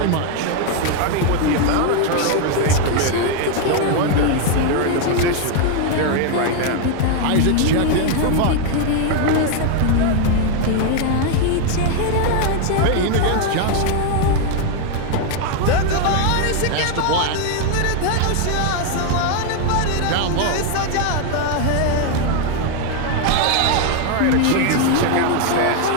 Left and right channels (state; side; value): different; both; correlation 0.01